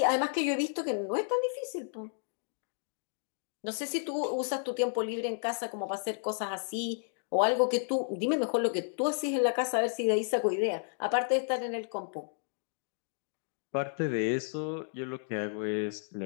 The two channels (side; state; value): right; silent; digital silence